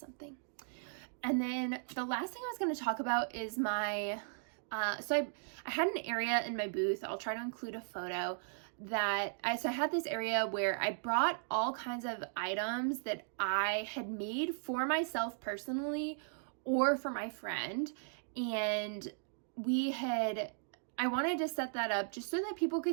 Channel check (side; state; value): left; silent; digital silence